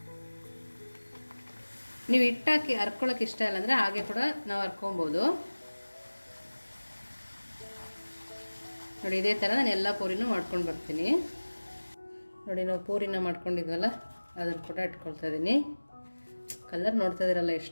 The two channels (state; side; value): inverted; both; correlation -1.00